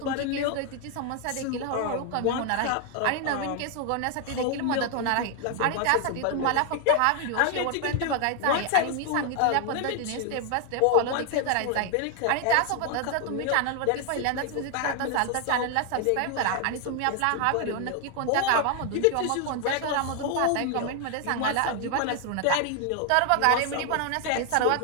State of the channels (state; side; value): different; both; correlation 0.00